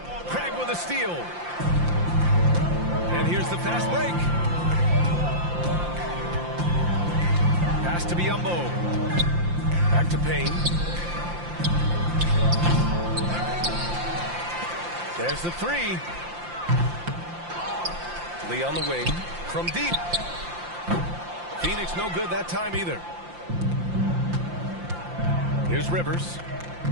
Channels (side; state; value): left; late; 5.7 ms